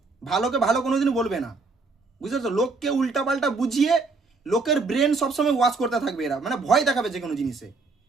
ভালোকে ভালো কোনোদিন বলবে না, বুঝতে? লোককে উল্টাপাল্টা বুঝিয়ে লোকের ব্রেন সবসময় ওয়াশ করতে থাকবে এরা, মানে ভয় দেখাবে যে কোনো জিনিসে।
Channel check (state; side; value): quieter; left; 4.0 dB